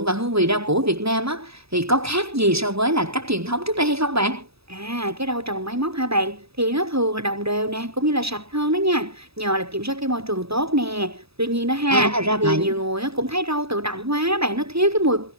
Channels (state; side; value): late; left; 0.78 ms